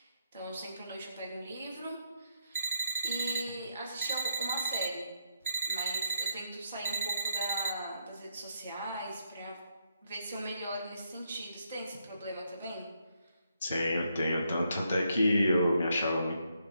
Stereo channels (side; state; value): both; inverted; correlation -0.78